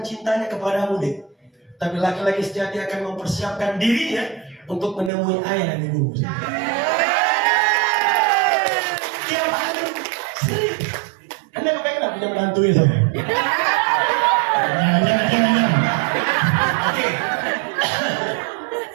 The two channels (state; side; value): drops out; left; at 5.1 s